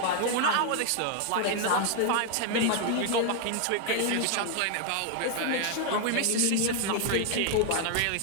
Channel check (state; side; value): different; both; correlation 0.00